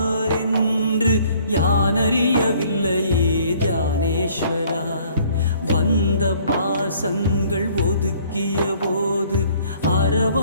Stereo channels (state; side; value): inverted; both; correlation -0.58